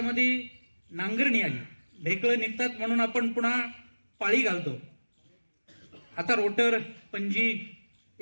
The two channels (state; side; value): inverted; both; correlation -1.00